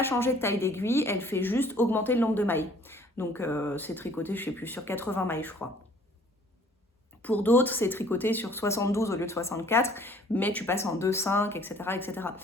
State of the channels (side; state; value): both; normal; correlation 0.56